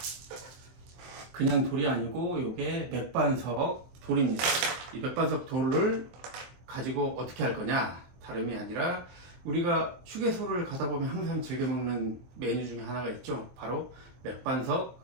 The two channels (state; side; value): late; left; 23 ms